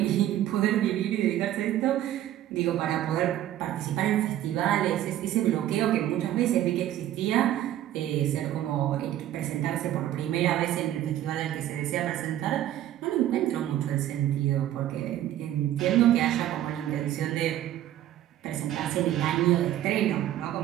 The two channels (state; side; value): quieter; left; 12.6 dB